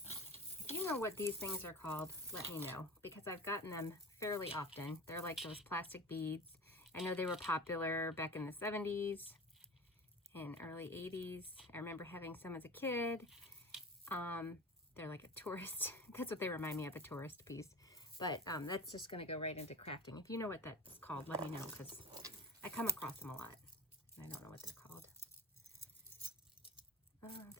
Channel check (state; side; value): normal; both; correlation 0.35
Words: If you know what these things are called, let me know, because I've gotten them fairly often. They're like those plastic beads. I know they were popular back in the 70s and early 80s. I remember having some as a kid. They're like a tourist, that's what they remind me of, a tourist piece. But that's just gonna go right into crafting. If you know what that's called, let me know, because I come across them a lot. And I don't know what they're called.